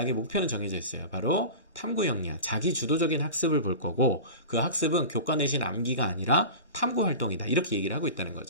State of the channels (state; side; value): inverted; both; correlation -0.31